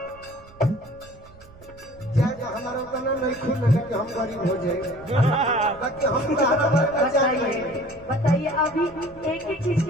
हमारा तना नहीं खुल कि हम गरीब हो जाए बताइए अभी एक ही चीज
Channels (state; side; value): noise; right; rumble, 23 dB below the sound